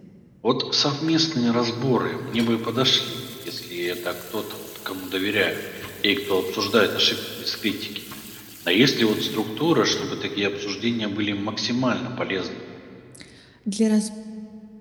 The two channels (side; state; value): both; identical; correlation 1.00